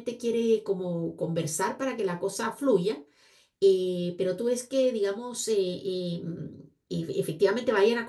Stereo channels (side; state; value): both; identical; correlation 1.00